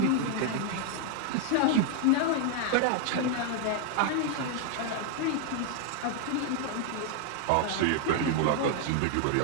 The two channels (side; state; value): both; different; correlation 0.00